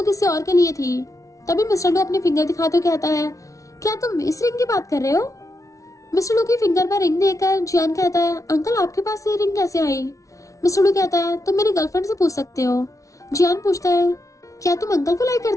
किसी और के लिए थी। तभी मिस्टर लू अपनी फिंगर दिखाते हुए कहता है, क्या तुम इस रिंग की बात कर रहे हो? मिस्टर लू की फिंगर पर रिंग देखकर जियान कहता है, अंकल आपके पास ये रिंग कैसे आई? मिस्टर लू कहता है, तुम मेरी गर्लफ्रेंड से पूछ सकते हो। जियान पूछता है, क्या तुम अंकल को लाइक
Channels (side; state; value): right; late; 0.16 ms